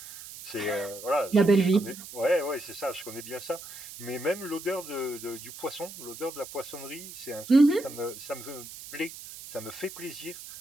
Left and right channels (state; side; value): noise; right; hiss, 13 dB below the sound